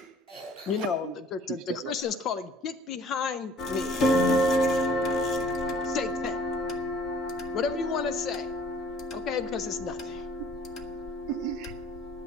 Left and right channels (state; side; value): normal; both; correlation 0.53